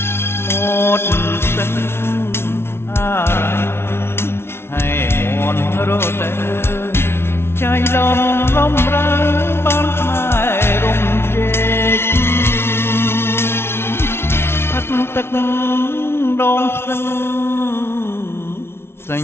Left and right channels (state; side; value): late; right; 0.12 ms